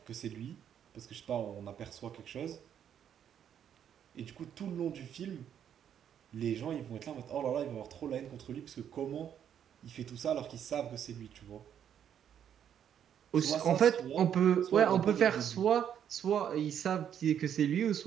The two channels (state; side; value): quieter; left; 9.2 dB